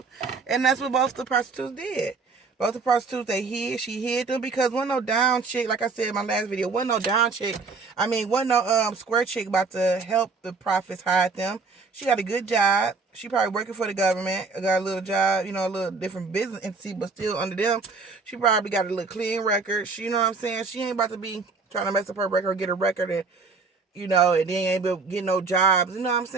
and that's what both the prostitutes did. Both the prostitutes, she hid them because wasn't no down chick, like I said in my last video, wasn't no down chick. I mean, wasn't no square chick about to help the prophets hide them. She got a good job. She probably working for the government. Got a little job, you know, a little different business entity, but still under them. She probably got a little clean record. She, you know what I'm saying? She ain't about to be trying to mess up her record or get a record and, you know, and then ain't able to get no jobs. You know what I'm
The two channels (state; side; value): quieter; left; 4.4 dB